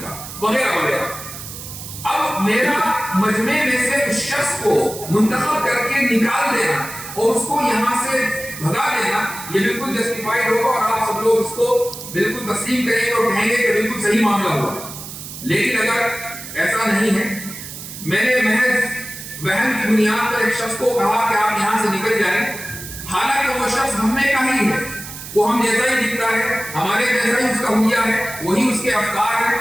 وغیرہ وغیرہ. اب میرا مجمع میں سے اس شخص کو منتخب کر کے نکال دینا اور اس کو یہاں سے بھگا دینا یہ بالکل جسٹیفائیڈ ہوگا اور آپ سب لوگ اس کو بالکل تسلیم کریں گے اور کہیں گے کہ بالکل صحیح معاملہ ہوا. لیکن اگر ایسا نہیں ہے, میں نے محض وہم کی بنیاد پر ایک شخص کو کہا کہ آپ یہاں سے نکل جائیں, حالانکہ وہ شخص ہم میں کا ہی ہے, وہ ہم جیسا ہی دکھتا ہے, ہمارے جیسا ہی اس کا حلیہ ہے, وہی اس کے افکار ہیں,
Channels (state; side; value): noise; right; hiss, 11 dB below the sound